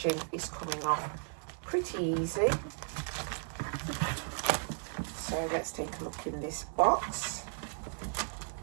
is coming off pretty easy. So let's take a look in this box.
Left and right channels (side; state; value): left; silent; digital silence